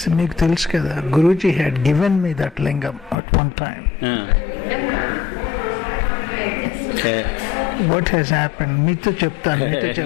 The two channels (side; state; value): right; drops out; at 3.2 s